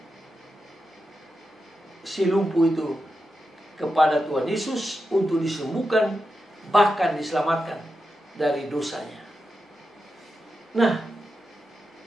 si lumpuh itu kepada Tuhan Yesus untuk disembuhkan, bahkan diselamatkan dari dosanya. Nah,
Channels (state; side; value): normal; both; correlation 0.89